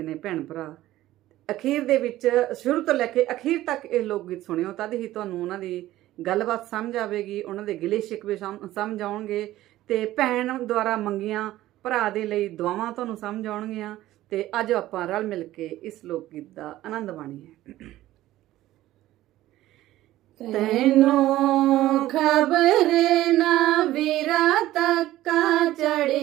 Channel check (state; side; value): quieter; left; 15.2 dB